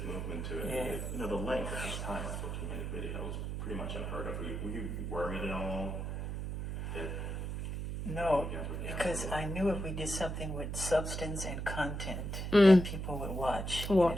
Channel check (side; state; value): right; noise; hum, 4 dB below the sound